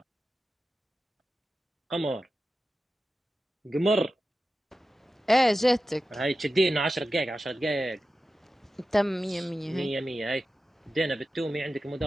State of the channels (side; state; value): both; normal; correlation 0.93